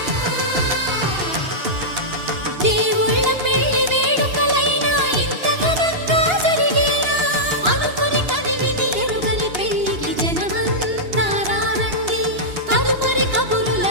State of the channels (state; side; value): late; left; 2.8 ms